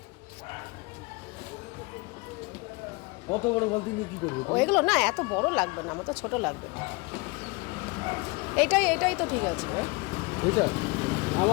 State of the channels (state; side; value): quieter; right; 26.5 dB